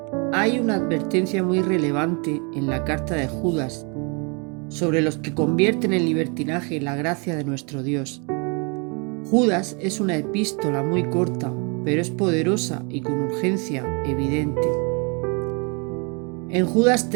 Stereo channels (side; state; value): left; quieter; 33.9 dB